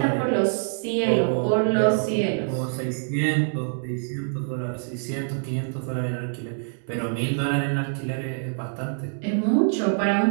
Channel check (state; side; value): silent; left; digital silence